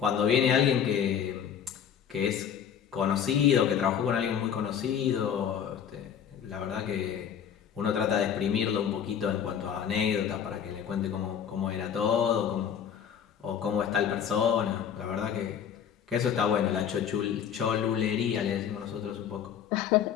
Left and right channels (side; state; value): right; quieter; 8.4 dB